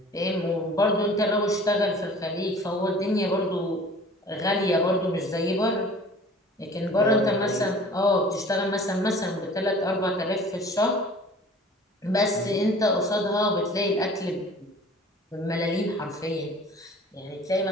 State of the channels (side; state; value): both; normal; correlation 0.47